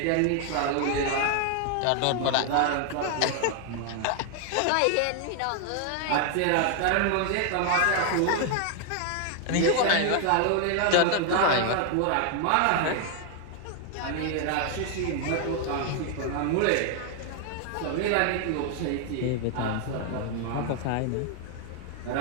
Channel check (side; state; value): both; different; correlation 0.00